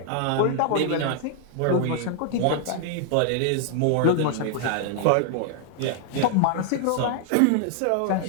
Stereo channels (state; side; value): different; both; correlation 0.00